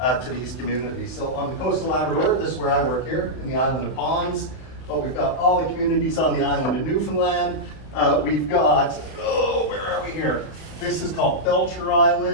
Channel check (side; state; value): right; late; 31 ms